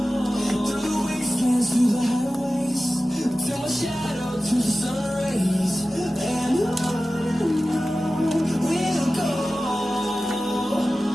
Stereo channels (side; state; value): both; normal; correlation 0.95